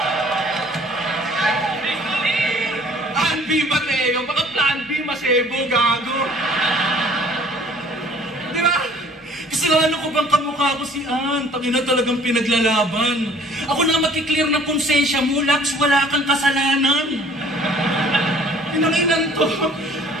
Kasalanan ko bang kamukha ko si Ann? Tangina talagang pinaglalaban. Ako na makiklear ng konsensya mo, Lax, wala kang kasalanan. Inanginan to.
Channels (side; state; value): both; normal; correlation 0.53